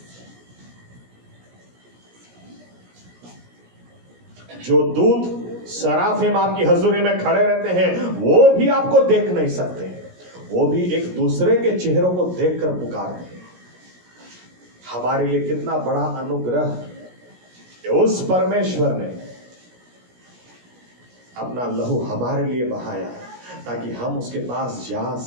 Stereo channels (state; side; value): late; left; 17 ms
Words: जो दूत सराफिम आपकी हजूरी में खड़े रहते हैं, वो भी आपको देख नहीं सकते, वो भी एक दूसरे के चेहरों को देखकर पुकारते हैं। हमारे लिए कितना बड़ा अनुग्रह कि उस परमेश्वर ने अपना लहू हमारे लिए बहाया, ताकि हम उसके पास जा